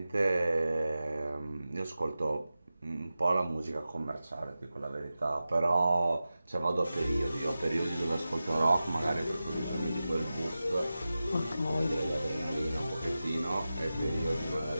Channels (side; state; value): both; inverted; correlation -0.94